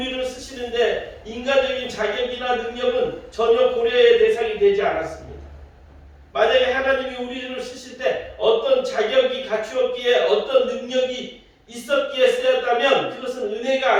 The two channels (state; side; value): identical; both; correlation 1.00